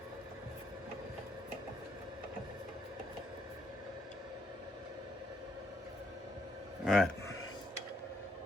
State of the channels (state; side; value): normal; both; correlation 0.74